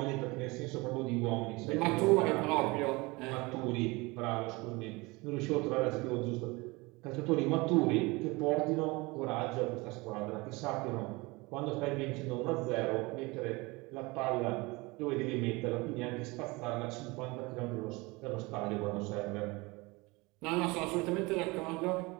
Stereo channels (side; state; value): left; quieter; 24.3 dB